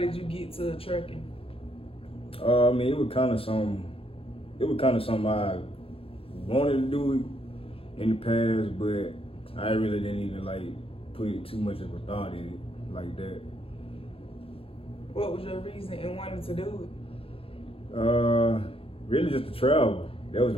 you get to trucking? I mean, it was kind of something I wanted to do in the past, but I really didn't even put too much of a thought in it like that. What was your reason in wanting to do it? Really just to travel. That was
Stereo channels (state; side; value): late; right; 0.27 ms